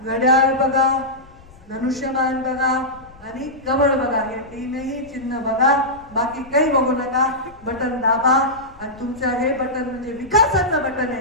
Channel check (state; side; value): noise; left; rumble, 24 dB below the sound